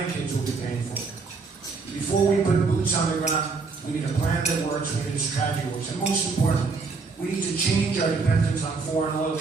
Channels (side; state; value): left; quieter; 4.4 dB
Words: will be paying for. Before we put boots on the ground, we need a plan that works, we need a strategy that works. And most importantly, we need to change our dependence on foreign oil